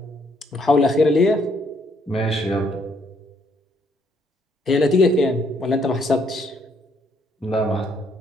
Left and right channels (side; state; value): both; normal; correlation 0.69